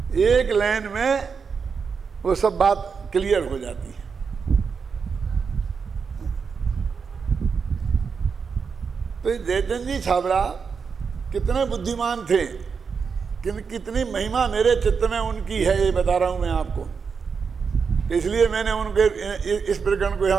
एक लाइन में वो सब बात क्लियर हो जाती है। तो ये जयचंद जी छाबड़ा कितने बुद्धिमान थे, कितनी महिमा मेरे चित्त में उनकी है, ये बता रहा हूं मैं आपको। इसलिए मैंने उनके इस प्रकरण को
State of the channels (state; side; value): quieter; left; 5.7 dB